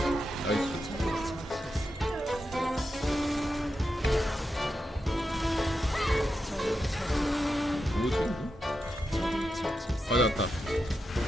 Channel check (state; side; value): normal; both; correlation 0.88